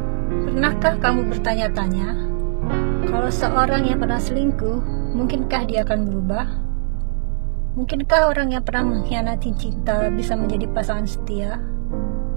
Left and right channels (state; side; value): silent; left; digital silence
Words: Pernahkah kamu bertanya-tanya, kalau seorang yang pernah selingkuh, mungkinkah dia akan berubah? Mungkinkah orang yang pernah mengkhianati cinta bisa menjadi pasangan setia?